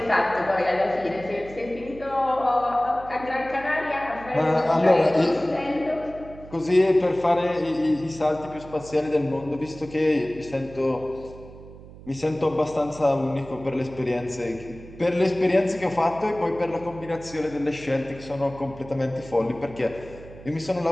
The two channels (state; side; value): noise; right; hum, 17 dB below the sound